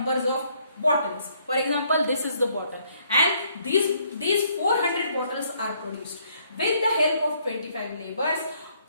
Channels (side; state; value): both; inverted; correlation -0.67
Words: of bottles. For example, this is the bottle, and these 400 bottles are produced. with the help of 25 laborers,